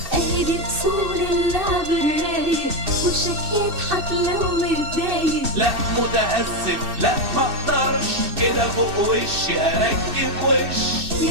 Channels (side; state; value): left; late; 2.5 ms